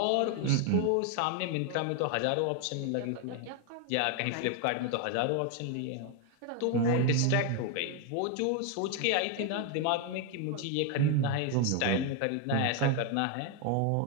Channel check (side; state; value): both; different; correlation 0.01